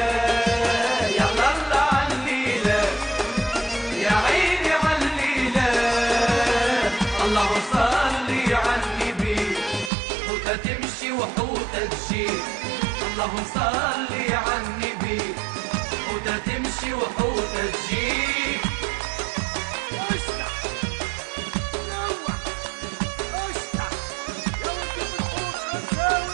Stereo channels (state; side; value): drops out; left; at 9.9 s